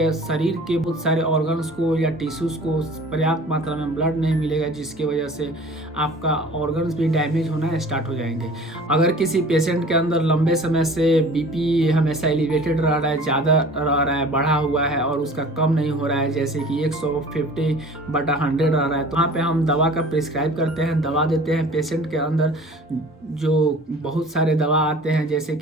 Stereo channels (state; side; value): normal; both; correlation 0.45